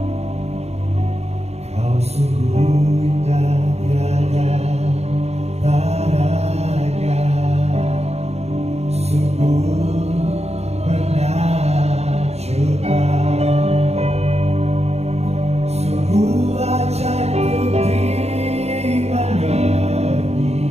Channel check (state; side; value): late; left; 0.31 ms